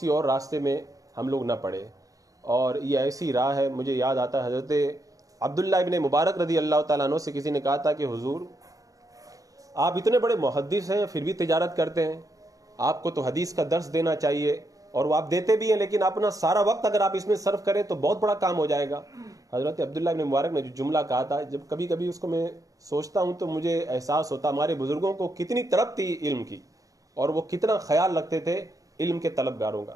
اور راستے میں ہم لوگ نہ پڑے. اور یہ ایسی راہ ہے, مجھے یاد آتا ہے حضرت عبداللہ ابن مبارک رضی اللہ تعالیٰ عنہ سے کسی نے کہا تھا کہ حضور آپ اتنے بڑے محدث ہیں پھر بھی تجارت کرتے ہیں, آپ کو تو حدیث کا درس دینا چاہیے, اور وہ آپ دیتے بھی ہیں, لیکن اپنا سارا وقت اگر آپ اس میں صرف کریں تو بہت بڑا کام ہو جائے گا. حضرت عبداللہ ابن مبارک نے جو جملہ کہا تھا, جب کبھی کبھی اس کو میں سوچتا ہوں تو مجھے احساس ہوتا ہمارے بزرگوں کو کتنی طلب تھی علم کی, اور وہ کتنا خیال رکھتے تھے علم کے طلبگاروں کا.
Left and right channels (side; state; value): left; late; 0.17 ms